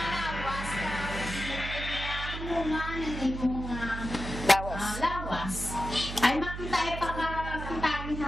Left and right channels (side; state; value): right; noise; hum, 7 dB below the sound